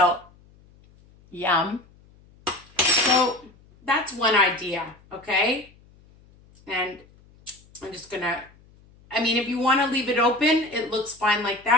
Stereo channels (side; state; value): left; noise; hum, 28 dB below the sound